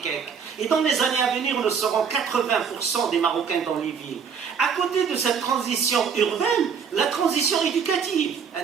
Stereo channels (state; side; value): quieter; left; 6.6 dB